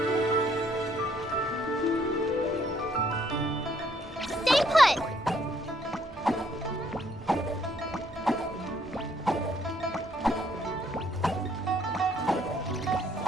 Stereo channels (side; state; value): both; normal; correlation 0.67